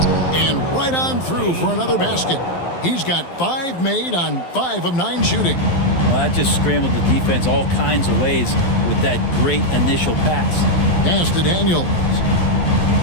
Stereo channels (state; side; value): late; right; 12 ms